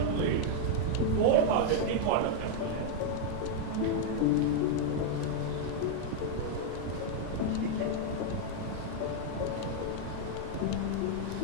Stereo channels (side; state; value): both; different; correlation -0.01